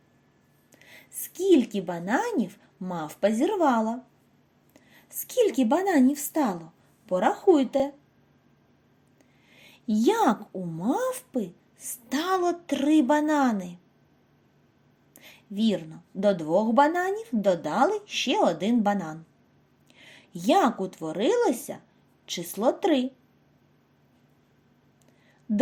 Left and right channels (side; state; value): both; identical; correlation 1.00